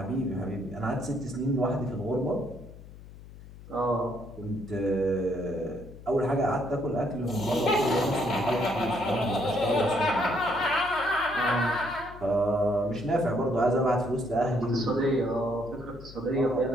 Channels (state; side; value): noise; left; hum, 17 dB below the sound